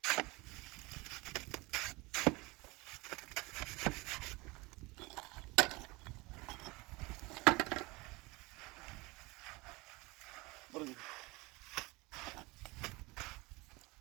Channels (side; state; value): left; quieter; 23.7 dB